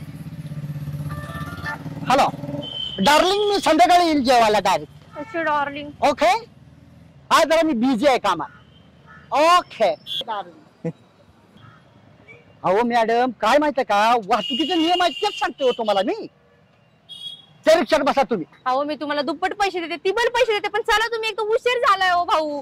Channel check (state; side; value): identical; both; correlation 1.00